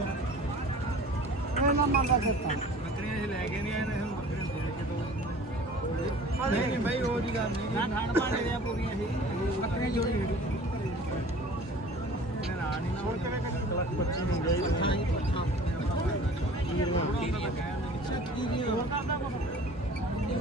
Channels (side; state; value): both; normal; correlation 0.45